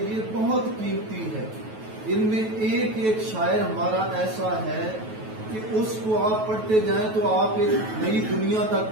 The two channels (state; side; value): late; left; 9.2 ms